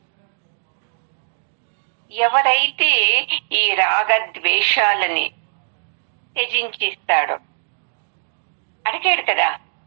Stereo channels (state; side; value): silent; left; digital silence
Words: ఎవరైతే ఈ రాగద్వేషాలని త్యజించిస్తాడో, అడిగాడు కదా